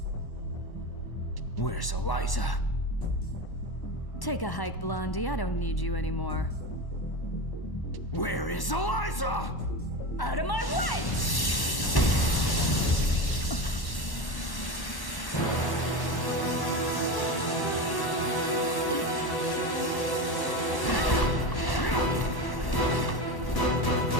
Where's Eliza? Take a hike, Blondie. I don't need you anymore. Where is Eliza? Out of my way!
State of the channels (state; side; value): late; right; 1.1 ms